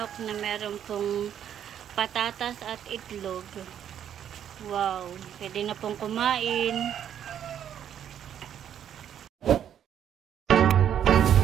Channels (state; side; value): quieter; left; 9.6 dB